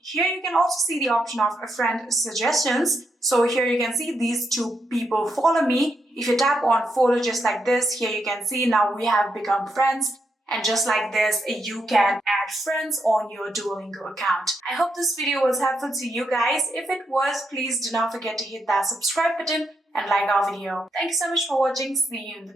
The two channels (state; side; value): normal; both; correlation 0.81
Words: Here you can also see the option of a friend suggestions. So here you can see these 2 people follow me. If you tap on follow just like this, here you can see now we have become friends. And just like this, you can add friends on your Duolingo account. I hope this video was helpful to you guys. If it was, please do not forget to hit that subscribe button and like our video. Thank you so much for watching. See you in the